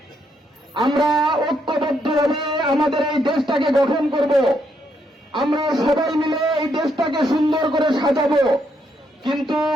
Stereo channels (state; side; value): normal; both; correlation 0.76